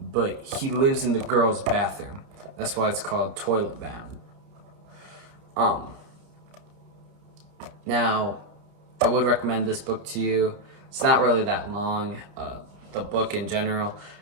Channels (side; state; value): left; late; 30 ms